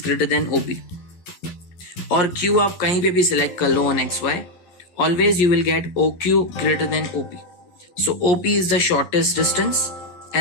greater than OP. और Q आप कहीं पे भी select कर लो on xy. Always you will get OQ greater than OP. So OP is the shortest distance,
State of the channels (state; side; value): late; right; 11 ms